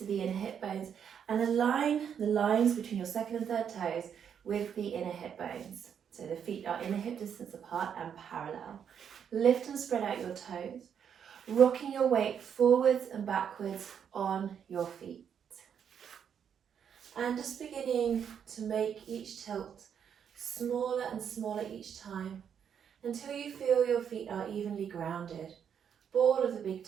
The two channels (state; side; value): quieter; left; 8.0 dB